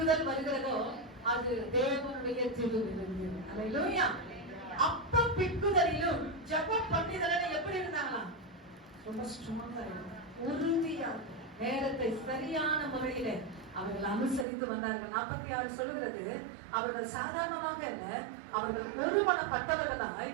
வருகிறதோ அது தேவனுடைய திருவிருந்து. அல்லேலூயா. அப்பம் பிற்குதலிலும் ஜெபம் பண்ணிதல எப்படி இருந்தாங்களாம்? ரொம்ப ஸ்ட்ராங்கா இருந்தாங்க, உறுதியா நேரத்தை சரியான முறையில அவர்கள் அனுசரித்து வந்தார்கள். 46 சொல்லுகிறது, அவர்கள் சாதாரணமாக இல்ல, அவர்கள் ஒருமனப்பட்டவர்களாய்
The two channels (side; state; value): left; drops out; at 14.5 s